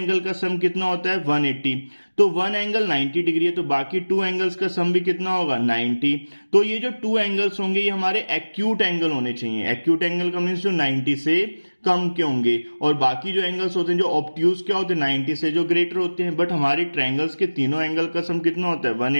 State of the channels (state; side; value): inverted; both; correlation -1.00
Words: का सम कितना होता है, 180। तो वन एंगल 90 डिग्री है, तो बाकी 2 एंगल्स का सम भी कितना होगा, 90। तो ये जो 2 एंगल्स होंगे ये हमारे एक्यूट एंगल होने चाहिए। एक्यूट एंगल का मीन्स जो 90 से कम के होंगे, और बाकी जो एंगल्स होते हैं जो ऑब्ट्यूज क्या होते हैं, 90 से जो ग्रेटर होते हैं। बट हमारे ट्रायंगल्स के तीनों एंगल का सम कितना होता है,